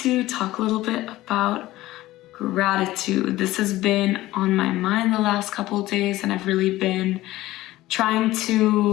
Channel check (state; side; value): quieter; right; 16.7 dB